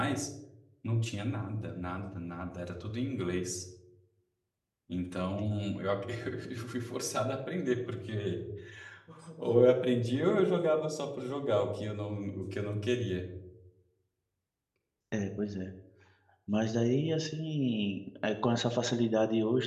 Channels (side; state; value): both; identical; correlation 1.00